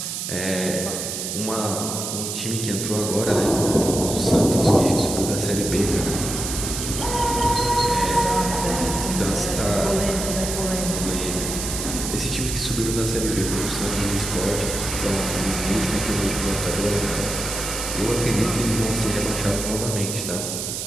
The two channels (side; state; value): right; noise; hiss, 4 dB below the sound